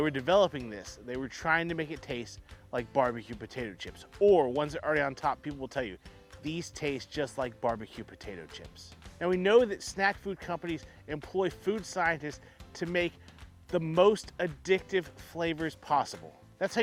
developing this, they were trying to make it taste like barbecue potato chips, or ones that are already on top, people will tell you these taste just like barbecue potato chips. Now we know that snack food companies employ food scientists to make the most addictive flavors possible. That's how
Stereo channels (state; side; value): identical; both; correlation 1.00